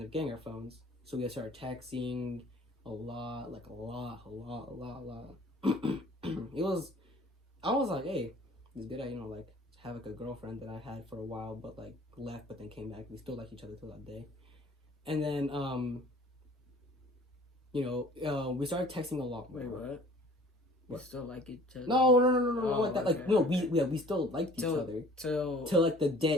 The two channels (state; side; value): normal; both; correlation 0.51